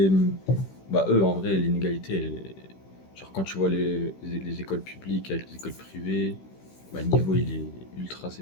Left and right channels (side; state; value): right; late; 16 ms